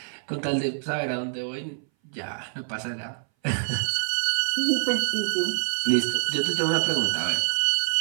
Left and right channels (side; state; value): left; silent; 59 dB below the other